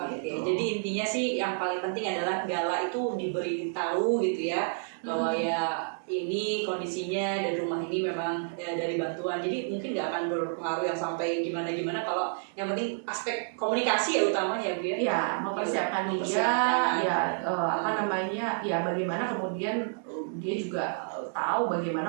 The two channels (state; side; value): silent; left; digital silence